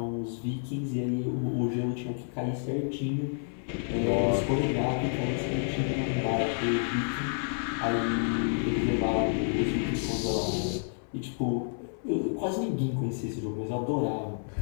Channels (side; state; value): right; silent; 58 dB below the other